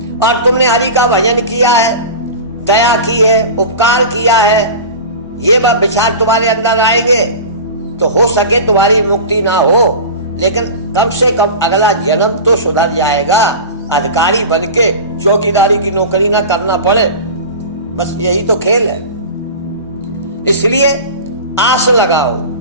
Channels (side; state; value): both; inverted; correlation -0.31